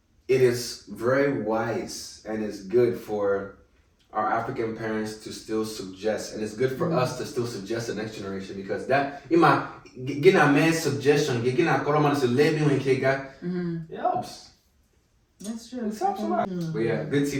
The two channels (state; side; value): identical; both; correlation 1.00